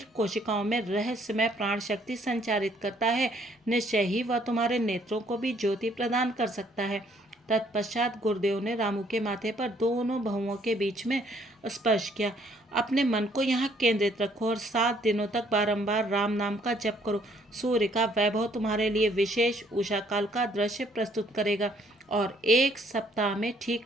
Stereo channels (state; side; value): normal; both; correlation 0.65